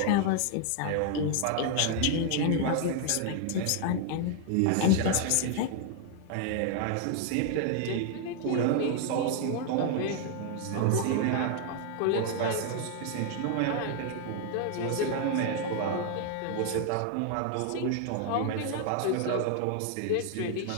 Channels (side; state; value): both; different; correlation 0.00